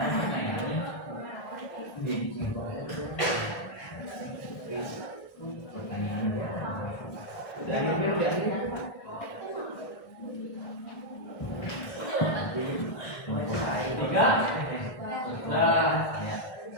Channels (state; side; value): late; right; 1.6 ms